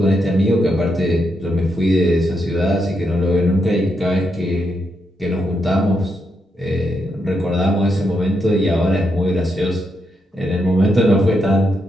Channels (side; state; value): both; normal; correlation 0.81